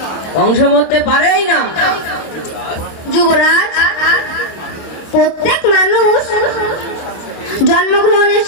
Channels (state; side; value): late; right; 26 ms